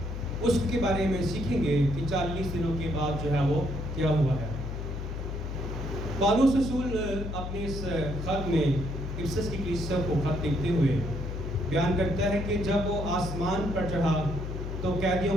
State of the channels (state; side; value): noise; left; hum, 5 dB below the sound